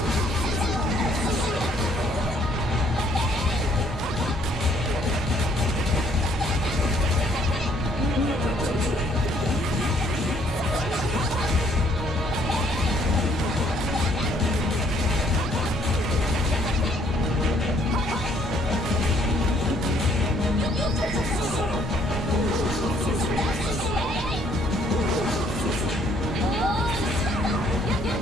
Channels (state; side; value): normal; both; correlation 0.65